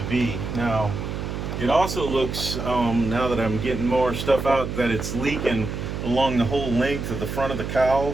be. Now, it also looks, now that I'm getting more stuff out, that it's leaking along the whole length of the front of the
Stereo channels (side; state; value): right; noise; hum, 5 dB below the sound